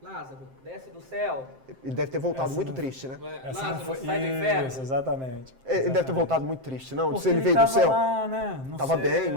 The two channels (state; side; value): late; left; 7.6 ms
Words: Lázaro, desce do céu. Ele deve ter voltado muito triste, né? Lázaro, sai do inferno. Isso, exatamente. Ele deve ter voltado muito triste, não? Porque Se ele veio do céu. Lá, né? Estava bem,